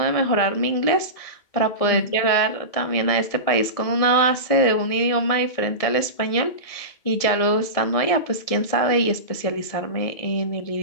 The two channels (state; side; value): late; right; 1.7 ms